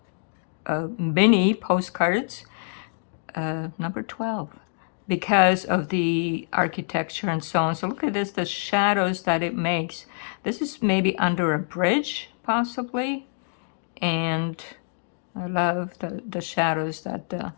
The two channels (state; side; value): silent; right; digital silence